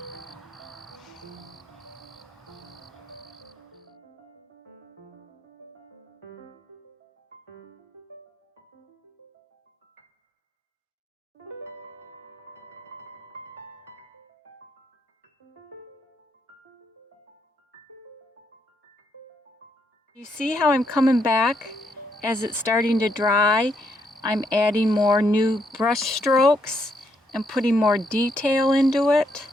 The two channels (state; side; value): normal; both; correlation 0.76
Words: You see how I'm coming back as it's starting to dry? I'm adding more new brush strokes and putting more detail into it.